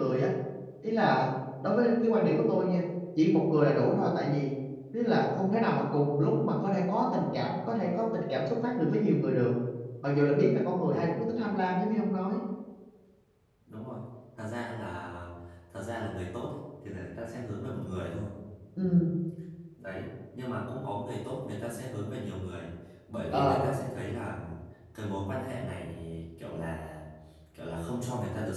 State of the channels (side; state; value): both; identical; correlation 1.00